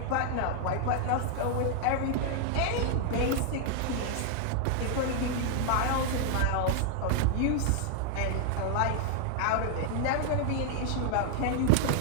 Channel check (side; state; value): both; different; correlation 0.00